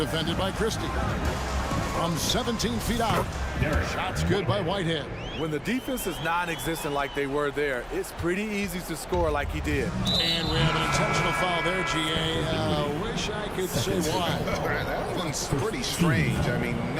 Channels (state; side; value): identical; both; correlation 1.00